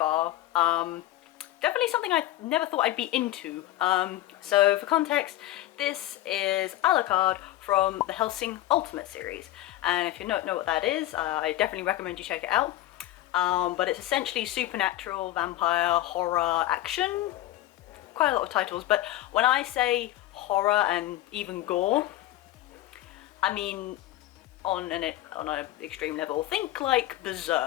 Definitely something I never thought I'd be into. So for context, this is Alucard from the Hellsing Ultimate series. And if you don't know what that is, I definitely recommend you check it out. But it's essentially supernatural, vampire, horror, action. Quite a lot of titles, but when I say horror and even gore, I mean on an extreme level. Think like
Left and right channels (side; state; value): right; quieter; 15.1 dB